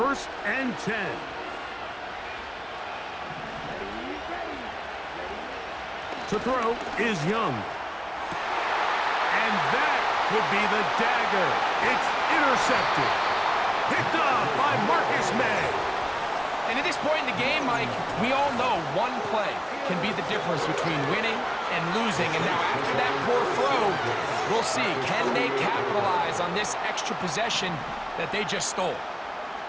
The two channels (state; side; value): identical; both; correlation 1.00